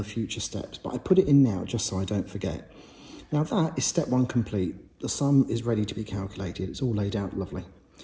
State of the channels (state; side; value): identical; both; correlation 1.00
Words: future steps, but I put it in now just so I don't forget. Now, that is step 1 complete. The sum is ready to be calculated. It's all laid out lovely.